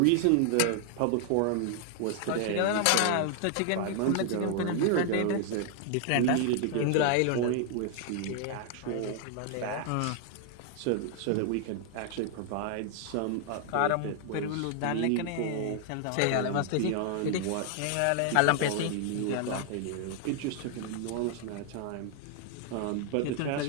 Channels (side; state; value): both; different; correlation 0.00